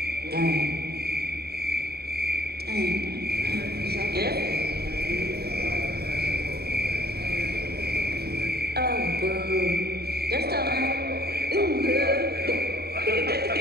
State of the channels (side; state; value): left; late; 0.46 ms